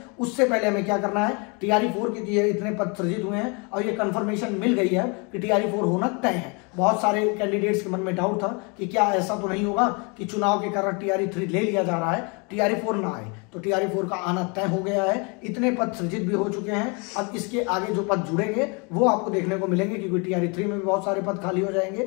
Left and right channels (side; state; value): right; quieter; 32.1 dB